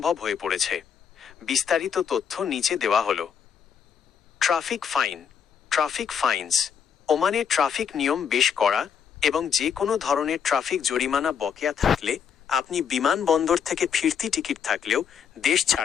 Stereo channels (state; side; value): quieter; right; 7.5 dB